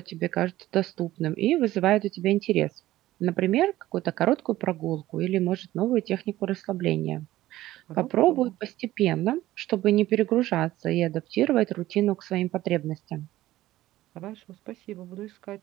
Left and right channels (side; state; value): left; quieter; 15.5 dB